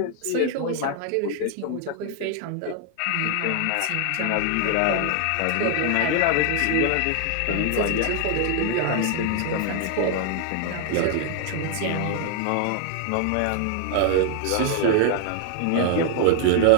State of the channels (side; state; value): both; different; correlation 0.00